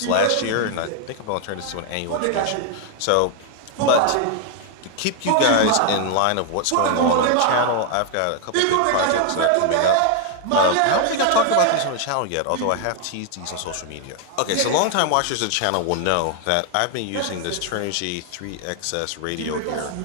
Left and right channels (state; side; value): different; both; correlation 0.00